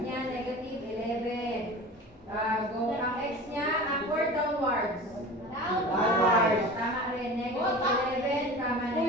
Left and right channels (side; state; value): both; normal; correlation 0.36